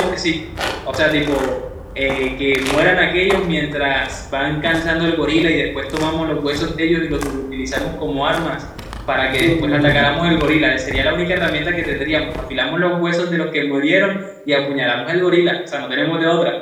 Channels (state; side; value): identical; both; correlation 1.00